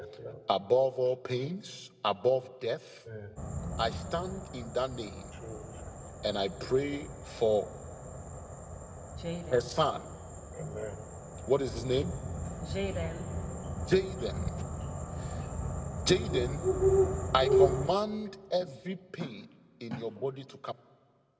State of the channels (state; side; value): identical; both; correlation 1.00